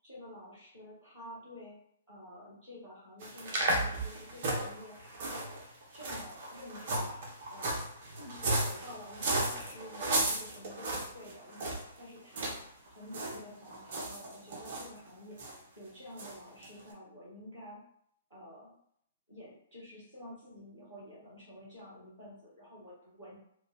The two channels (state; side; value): inverted; both; correlation -0.51